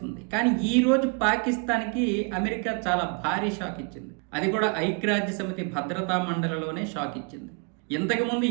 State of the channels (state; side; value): quieter; left; 34.6 dB